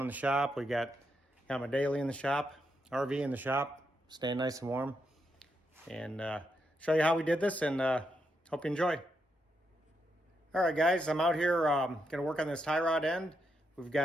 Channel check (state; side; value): normal; both; correlation 0.81